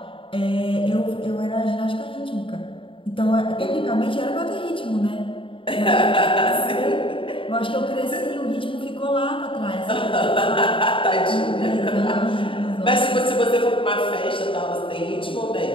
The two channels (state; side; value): late; right; 0.25 ms